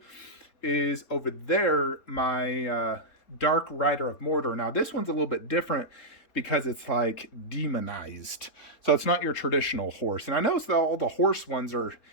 is over there, my Dark Rider of Mordor. Now, this one's a little bit different because it's like demonized. So it's not your traditional horse. And I noticed that all the horse ones are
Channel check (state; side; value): late; right; 3.8 ms